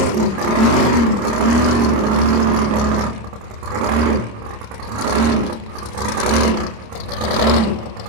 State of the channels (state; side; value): late; left; 26 ms